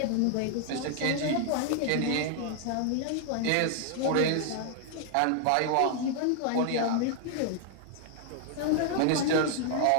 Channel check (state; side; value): different; both; correlation 0.00